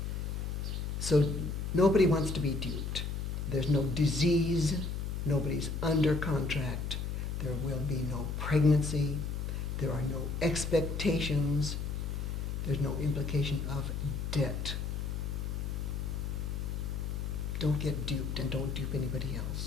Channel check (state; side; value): noise; left; hum, 3 dB below the sound